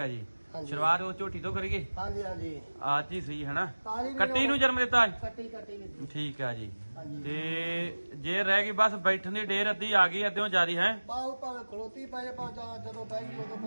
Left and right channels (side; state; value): both; inverted; correlation -1.00